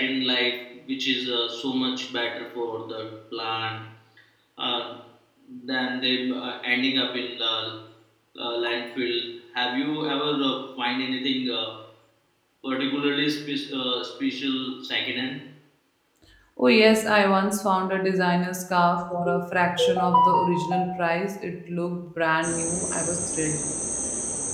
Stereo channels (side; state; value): both; identical; correlation 1.00